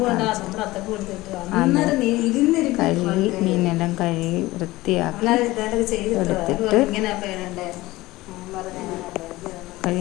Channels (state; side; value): quieter; right; 18.8 dB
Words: കാണിച്ചു. കഴുകി മീനെല്ലാം കഴുകി വൃത്തിയാക്കി എടുത്തിട്ട്